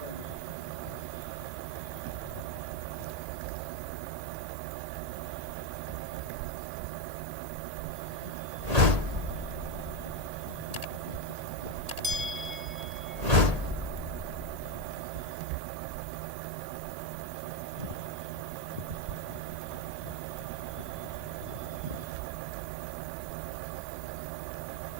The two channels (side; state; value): left; late; 1.8 ms